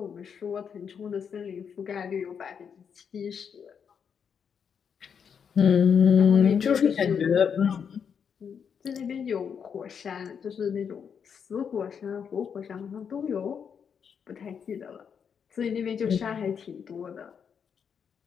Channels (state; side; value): quieter; right; 7.1 dB